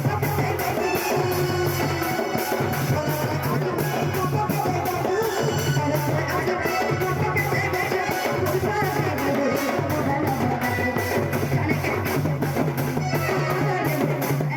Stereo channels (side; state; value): both; identical; correlation 1.00